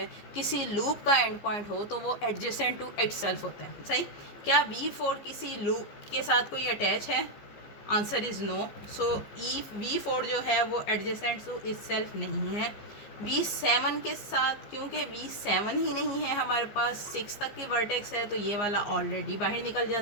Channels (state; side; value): late; right; 15 ms